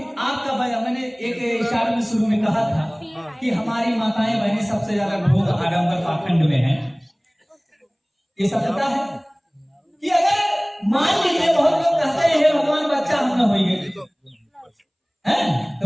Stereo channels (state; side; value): identical; both; correlation 1.00